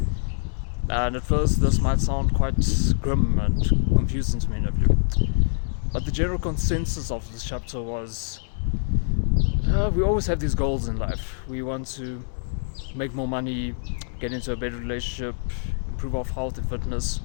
And at first this might sound quite grim and confusing to many of you. But the general consensus of this chapter was, we always have these goals in life. We want to make more money, get into a better relationship, improve our health and fitness.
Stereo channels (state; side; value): silent; right; 62 dB below the other